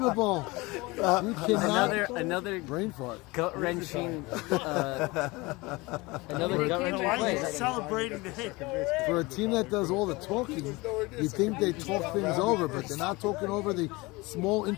You cannot. Another brain fart. Gut wrenching. Another gut wrenching play. Celebrating the hit. For a team that does all the talking, you think they talk things over, but they're not talking over the small,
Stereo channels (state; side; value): quieter; right; 23.2 dB